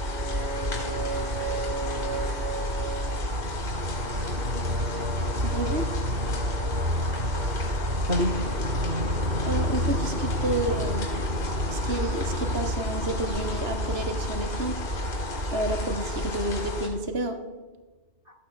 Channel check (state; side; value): late; left; 2.9 ms